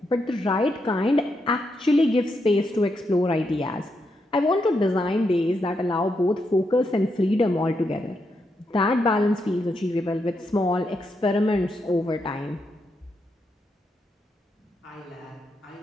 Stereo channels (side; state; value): both; normal; correlation 0.82